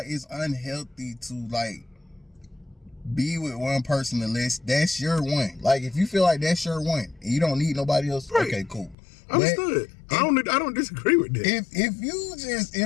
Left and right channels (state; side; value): drops out; right; at 9.0 s